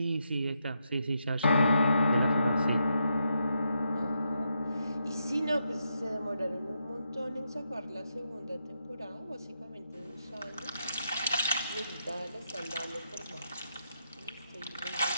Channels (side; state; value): both; inverted; correlation -0.82